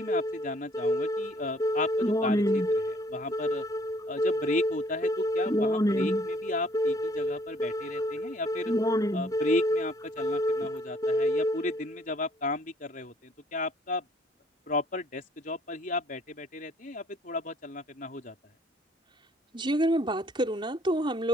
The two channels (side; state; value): both; normal; correlation 0.61